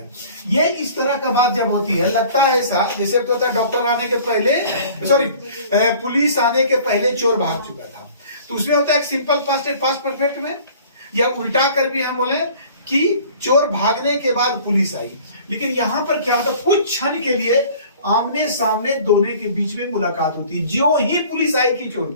ये इस तरह का बात जब होती है, लगता है ऐसा जैसे तो होता है डॉक्टर आने के पहले, सॉरी पुलिस आने के पहले चोर भाग चुका था। तो उसमें होता है एक सिंपल पास्ट, एक पास्ट परफेक्ट में, या उल्टा कर भी हम बोले कि चोर भागने के बाद पुलिस आई। लेकिन यहां पर क्या होता है, कुछ क्षण के लिए आमने सामने दोनों के बीच में मुलाकात होती है। ज्यों ही पुलिस आई कि चोर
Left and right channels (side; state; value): both; inverted; correlation -0.49